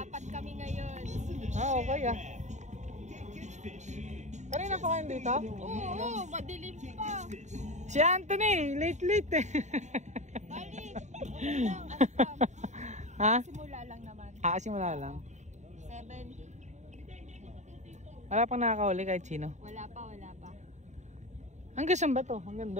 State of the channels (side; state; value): left; late; 0.34 ms